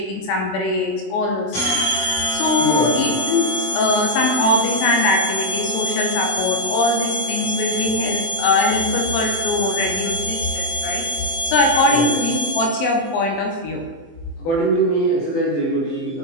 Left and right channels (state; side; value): late; right; 24 ms